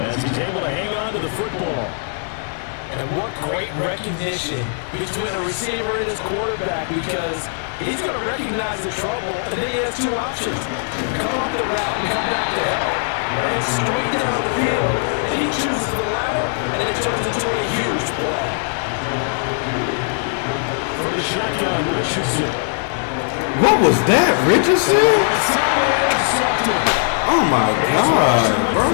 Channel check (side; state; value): right; silent; 65 dB below the other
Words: as he's able to hang on to the football. And what great recognition between a receiver and his quarterback, because he's going to recognize the trouble, and then he has two options. Come off the route and come back to help. And straight down the field, and he chooses the latter, and it turns into a huge play. For the shotgun, Richardson. What was that, Richardson? Oh my God,